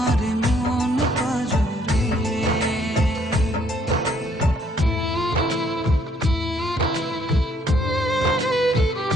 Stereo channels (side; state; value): both; normal; correlation 0.66